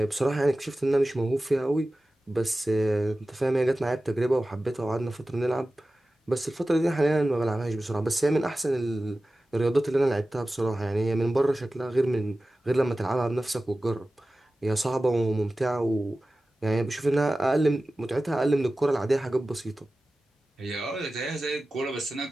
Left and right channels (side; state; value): both; normal; correlation 0.96